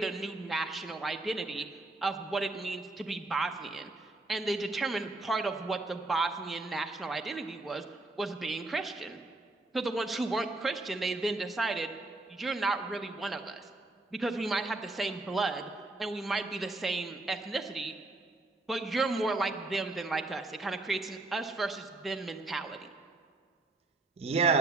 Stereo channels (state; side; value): quieter; left; 3.0 dB